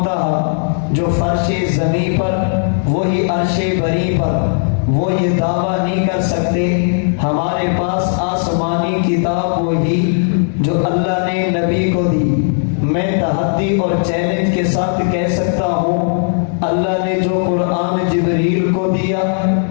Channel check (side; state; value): right; silent; digital silence